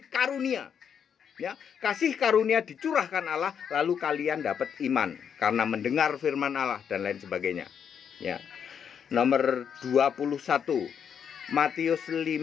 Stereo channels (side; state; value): right; quieter; 7.7 dB